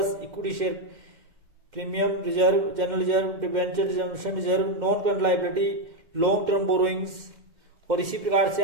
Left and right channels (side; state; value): left; late; 2.1 ms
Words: equity share premium, reserve, general reserve, debenture reserve, non current liability, long term borrowings. और इसी प्रकार से